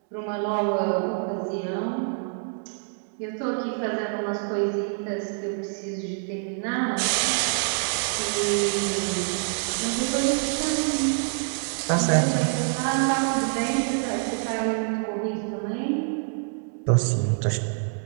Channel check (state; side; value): silent; left; digital silence